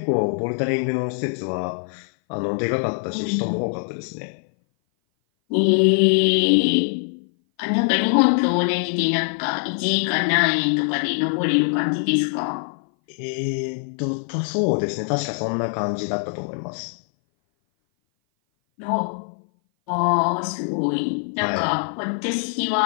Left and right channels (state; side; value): silent; right; 58 dB below the other